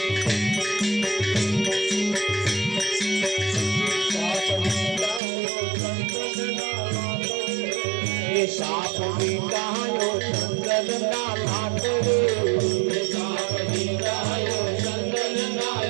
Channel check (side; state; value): left; drops out; at 5.2 s